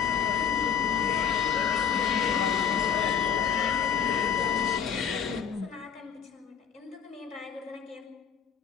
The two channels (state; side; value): quieter; right; 7.6 dB